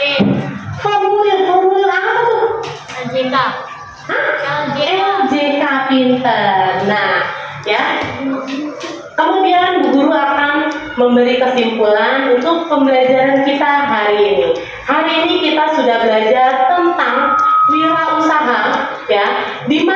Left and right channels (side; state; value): both; identical; correlation 1.00